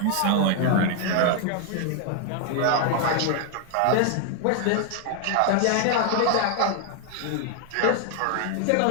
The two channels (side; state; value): both; different; correlation 0.00